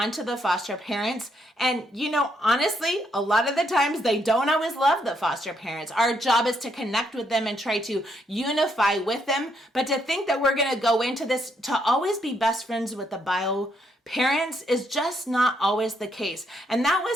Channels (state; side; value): normal; both; correlation 0.75